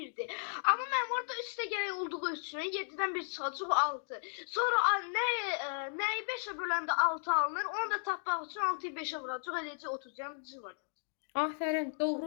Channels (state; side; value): silent; right; digital silence